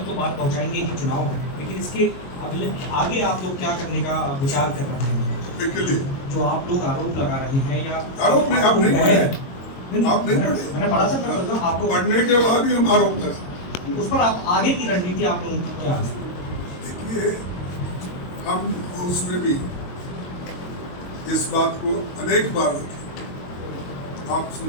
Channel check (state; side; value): late; right; 22 ms